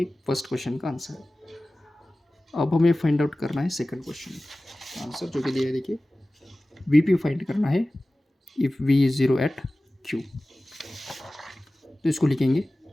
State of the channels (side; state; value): both; normal; correlation 0.97